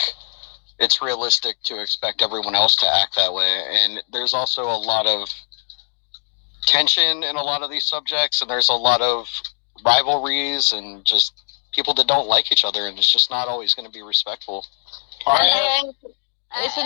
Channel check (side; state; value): right; silent; digital silence